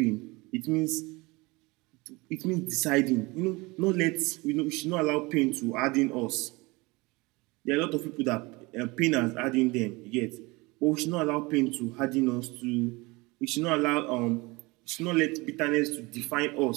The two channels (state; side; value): quieter; left; 24.2 dB